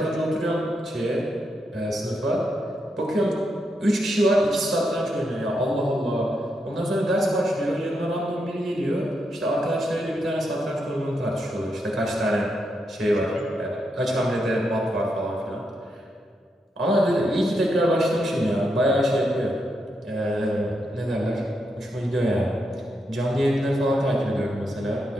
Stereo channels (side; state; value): both; normal; correlation 0.82